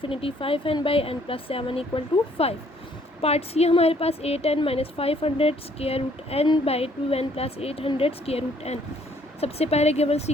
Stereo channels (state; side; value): normal; both; correlation 0.64